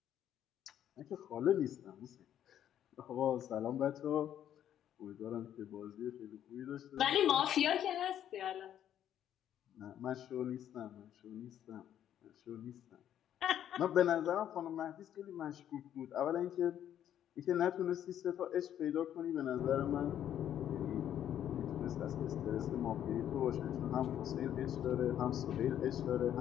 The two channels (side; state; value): right; quieter; 10.5 dB